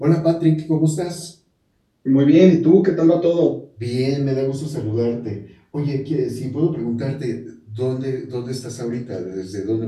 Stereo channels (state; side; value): identical; both; correlation 1.00